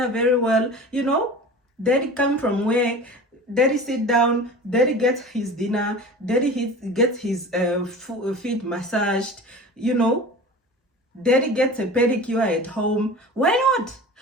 very well, you know, daddy come from work, daddy sit down, daddy gets his dinner, daddy gets his feet massaged, you know, daddy gets a pedicure at home. Why not?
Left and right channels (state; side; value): normal; both; correlation 0.37